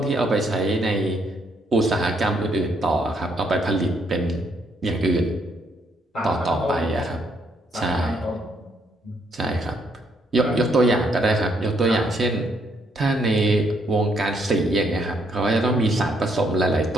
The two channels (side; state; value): both; normal; correlation 0.72